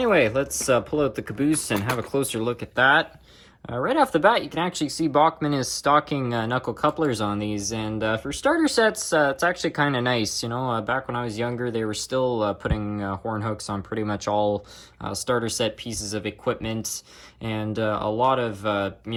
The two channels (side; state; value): both; identical; correlation 1.00